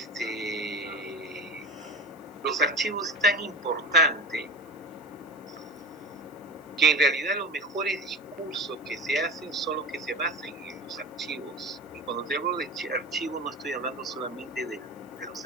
los archivos es tan importante que en realidad los mejores discursos que se hacen son los que se basan en los archivos. Y cuando te hablo de archivos no estoy hablando solamente de los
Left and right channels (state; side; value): noise; left; hiss, 29 dB below the sound